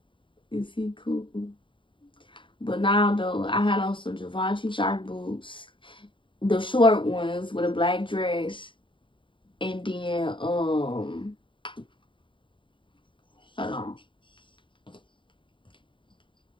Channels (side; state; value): right; late; 0.24 ms